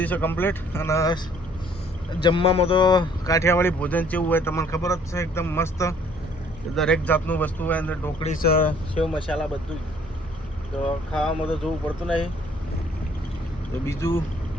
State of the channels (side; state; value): both; normal; correlation 0.60